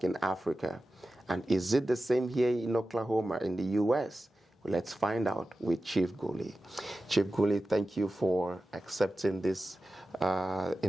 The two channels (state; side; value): normal; both; correlation 0.94